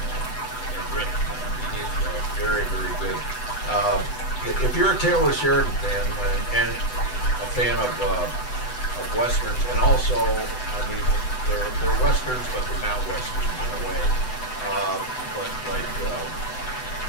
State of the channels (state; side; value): late; right; 8.0 ms